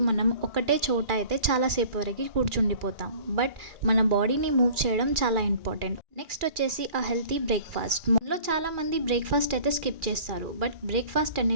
మనం ఒకటే చోట అయితే చాలాసేపు వరకు కూర్చుండిపోతాం. బట్ మన బాడీని మూవ్ చేయడం చాలా ఇంపార్టెంట్. నెక్స్ట్ వచ్చేసి ఆ హెల్తీ బ్రేక్ఫాస్ట్. మనలో చాలామంది బ్రేక్ఫాస్ట్ అయితే స్కిప్ చేస్తారు, బట్ బ్రేక్ఫాస్ట్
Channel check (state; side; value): late; left; 2.4 ms